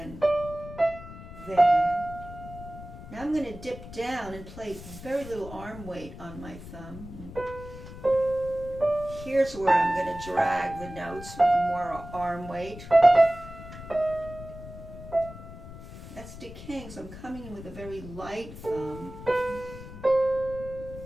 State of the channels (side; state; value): left; noise; rumble, 14 dB below the sound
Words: there. Now I'm going to dip down and play very little arm weight on my thumb. Here's where I'm going to drag the notes with more arm weight. That's decaying, so I'm coming in with a very light thumb.